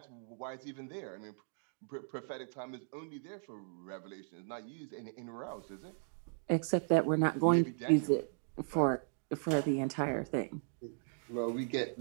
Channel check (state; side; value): silent; left; digital silence